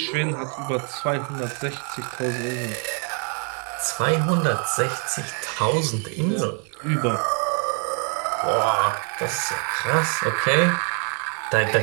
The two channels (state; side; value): quieter; left; 39.6 dB